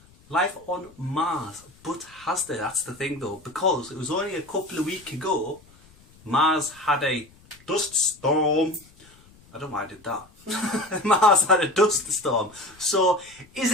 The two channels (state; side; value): noise; left; rumble, 27 dB below the sound